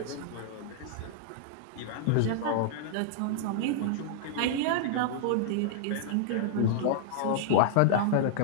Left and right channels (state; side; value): different; both; correlation -0.01